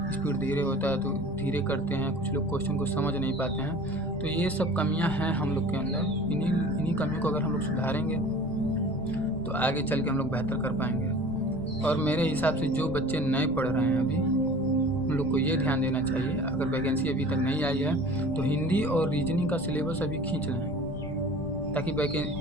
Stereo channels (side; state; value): left; noise; rumble, 13 dB below the sound